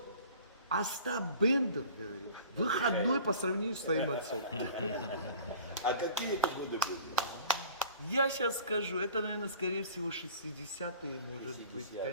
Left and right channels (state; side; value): inverted; both; correlation -0.45